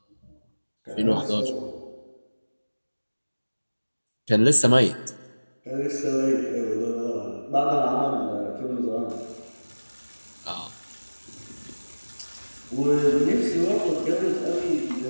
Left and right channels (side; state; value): both; inverted; correlation -1.00